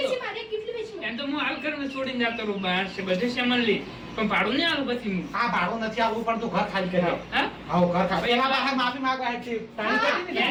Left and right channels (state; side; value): identical; both; correlation 1.00